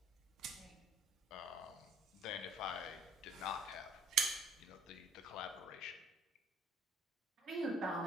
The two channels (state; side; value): normal; both; correlation 0.56